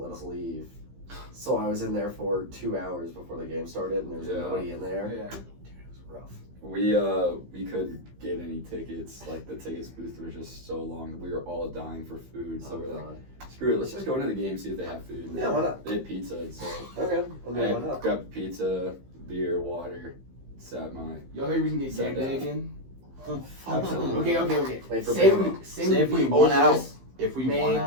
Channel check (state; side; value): late; left; 15 ms